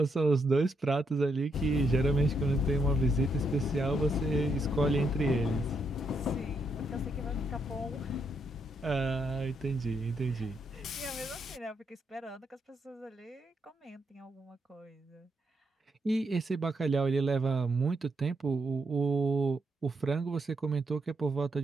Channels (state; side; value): normal; both; correlation 0.78